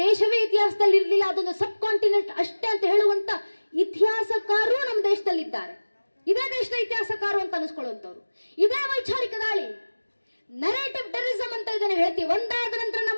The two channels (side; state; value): both; inverted; correlation -1.00